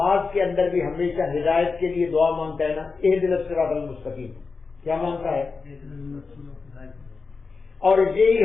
کے اندر بھی ہمیشہ ہدایت کے لیے دعا مانگتا ہے نا، اہدنا الصراط المستقیم، کیا مانگتا ہے؟ اور یہی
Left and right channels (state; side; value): quieter; right; 4.5 dB